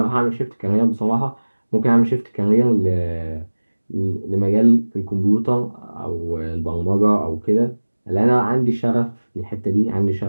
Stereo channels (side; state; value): both; inverted; correlation -1.00